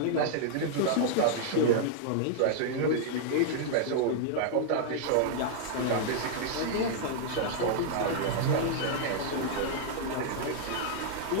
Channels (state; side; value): different; both; correlation -0.01